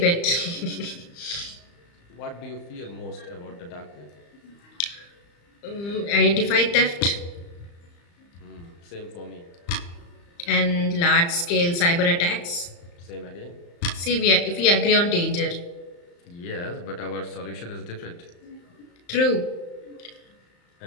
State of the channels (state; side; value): late; right; 35 ms